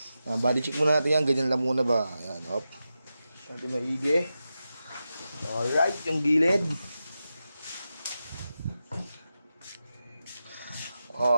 Body check muna natin yan. Ganyan lang muna ba? Ayan, op. Natin maigi. Alright, yung gilid.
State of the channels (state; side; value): inverted; both; correlation -0.91